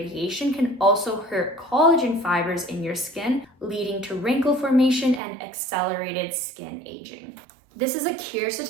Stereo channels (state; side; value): drops out; left; at 5.2 s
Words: can also hurt collagen fibers in your skin, leading to wrinkle formation and accelerated skin aging. This is a